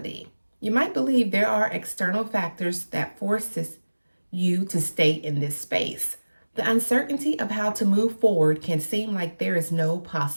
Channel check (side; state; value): both; inverted; correlation -1.00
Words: You might believe there are external factors that forces you to stay in this space. The uncertainty of how to move forward can seem like there is no